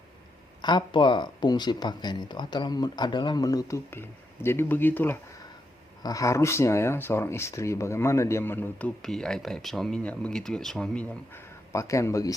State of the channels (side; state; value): both; normal; correlation 0.82